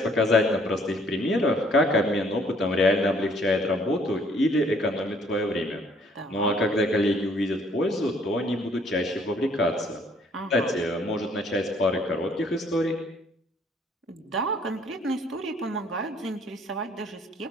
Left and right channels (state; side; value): normal; both; correlation 0.62